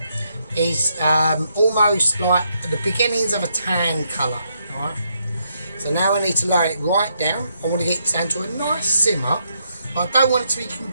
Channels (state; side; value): inverted; both; correlation -0.77